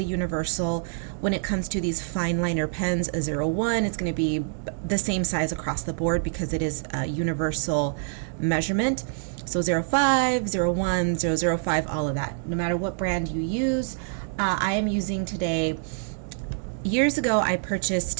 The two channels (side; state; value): left; silent; digital silence